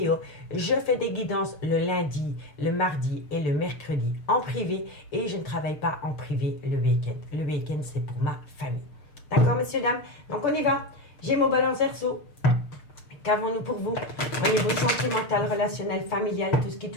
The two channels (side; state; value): right; late; 6.6 ms